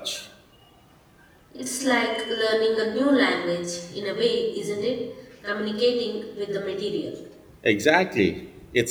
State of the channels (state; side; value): identical; both; correlation 1.00